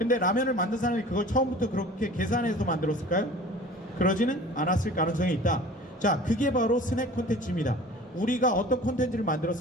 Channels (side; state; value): both; normal; correlation 0.43